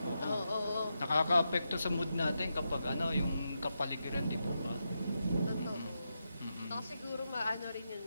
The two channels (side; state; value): both; inverted; correlation -0.86